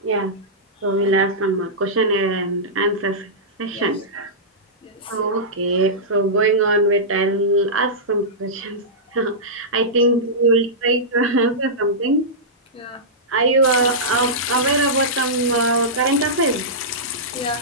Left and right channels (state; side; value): normal; both; correlation -0.14